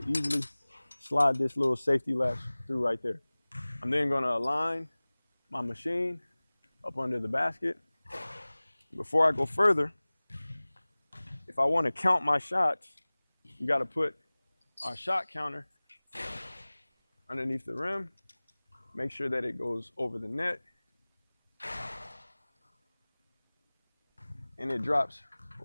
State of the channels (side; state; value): both; inverted; correlation -1.00